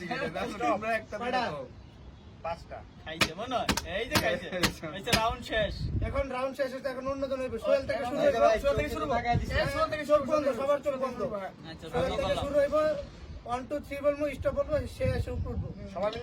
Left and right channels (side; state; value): both; identical; correlation 1.00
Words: করে Stop. তোমরা একটা কয়টা? দাও 5টা। খাইছে মনে হয়। এই যে খাইছে। খাইছে রাউন্ড শেষ। এখন রাউন্ড শেষ হচ্ছে, এখন অন্যজন হইবে। সোহেল থেকে শুরু এই যে হইব। ভাই, সোহেল থেকে শুরু করবো। টাকা দিছে। এই সোহেল থেকে চোখ শুরু বন্ধ, করবো। সবার চোখ বন্ধ। আচ্ছা সোহেল শুরু থেকে করলাম। শুরু হইব। 1 2 3 বলবো, স্টপ বলবো, সে এসে উপরে উঠবো। সবাই